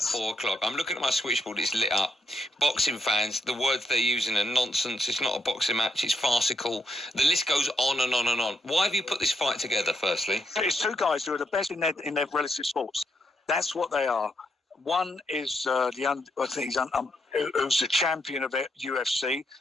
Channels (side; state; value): both; normal; correlation 0.79